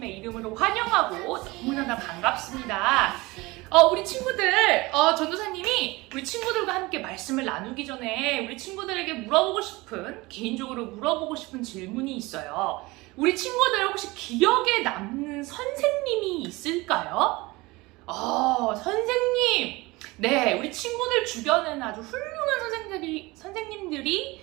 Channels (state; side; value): quieter; left; 22.3 dB